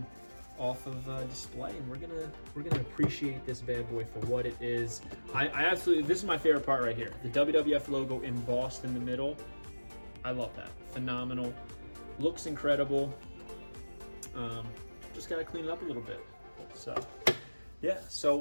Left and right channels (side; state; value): both; inverted; correlation -1.00